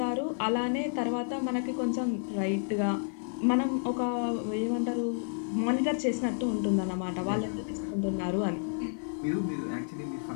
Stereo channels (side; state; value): right; silent; 57 dB below the other